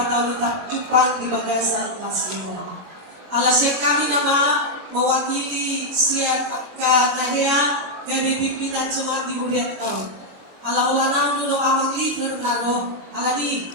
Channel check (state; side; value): late; left; 22 ms